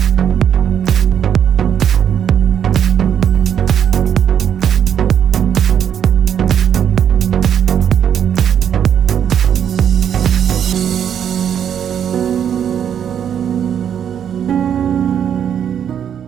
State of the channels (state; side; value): quieter; left; 8.8 dB